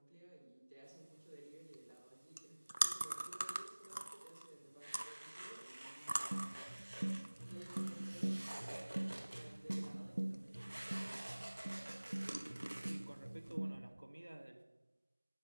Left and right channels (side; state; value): both; inverted; correlation -1.00